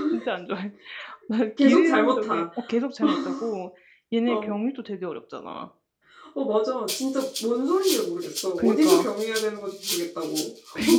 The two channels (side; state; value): both; identical; correlation 1.00